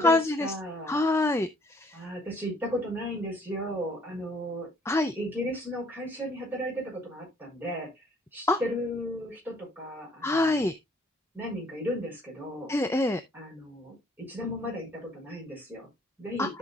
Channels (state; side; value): normal; both; correlation 0.61